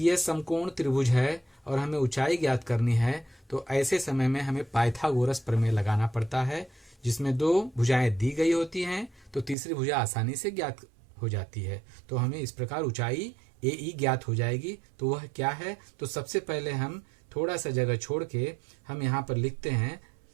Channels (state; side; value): drops out; left; at 9.6 s